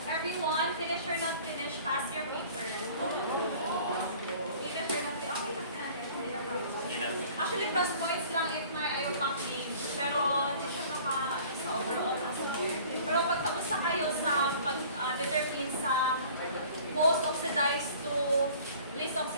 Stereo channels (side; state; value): both; inverted; correlation -0.49